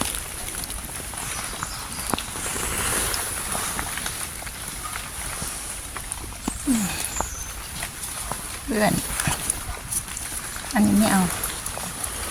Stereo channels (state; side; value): identical; both; correlation 1.00